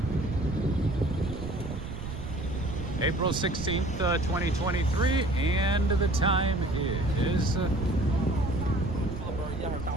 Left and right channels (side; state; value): right; noise; rumble, 8 dB below the sound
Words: April 16th, 2023, and the time is